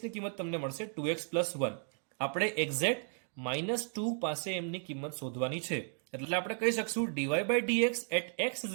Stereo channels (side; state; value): left; silent; 55 dB below the other